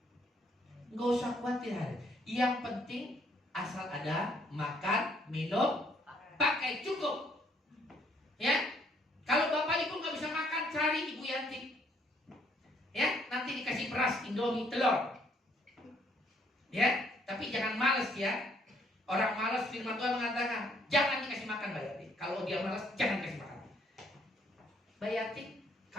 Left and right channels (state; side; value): normal; both; correlation 0.67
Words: Nggak usah khawatir. Yang penting asal ada makan, minum, pakai cukup. Ya, kalau Bapak Ibu nggak bisa makan, cari Ibu Yanti. Ya, nanti dikasih beras, Indomie, telur. Ya, tapi jangan males ya. Orang malas, firman Tuhan mengatakan jangan dikasih makan Mbak Yati. Kalau dia malas, jangan dikasih makan. Mbak Yati,